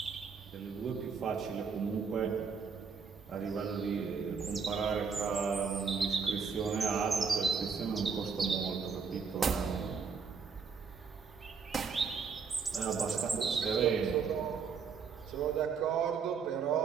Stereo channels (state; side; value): quieter; left; 5.8 dB